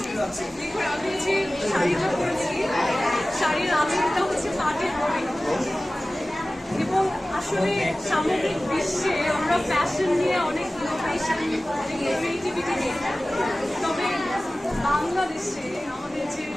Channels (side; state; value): both; normal; correlation 0.97